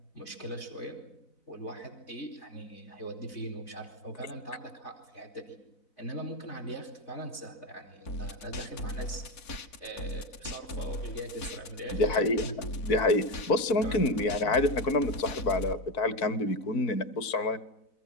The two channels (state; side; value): late; right; 4.0 ms